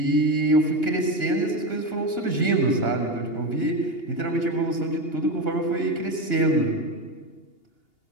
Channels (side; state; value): right; late; 2.8 ms